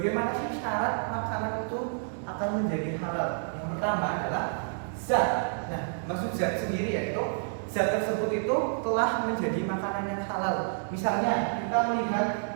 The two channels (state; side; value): silent; left; digital silence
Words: sih syarat makanan itu akan menjadi halal? Yang pertama adalah zat. Nah, maksud zat sendiri yaitu zat tersebut itu telah menjadi makanan yang halal. Misalnya kita melihat